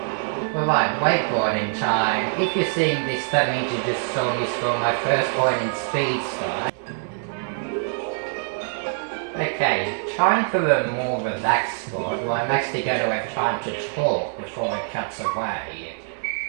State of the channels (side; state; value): left; silent; 63 dB below the other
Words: Alright, wakeboarding time. If you're seeing this, that means you just saw me score my first point in Speed Style. Okay, time for a more relaxed sport where I'm actually going to have time to talk before it cuts away.